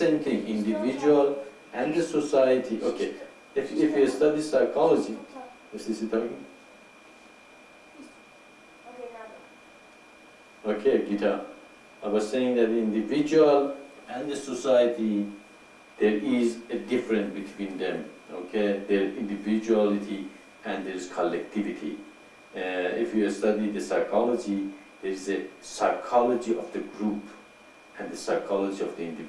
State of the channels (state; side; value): identical; both; correlation 1.00